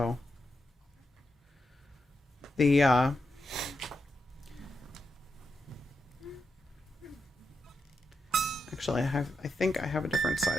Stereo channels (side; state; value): both; normal; correlation 0.86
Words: the actually I think I have a different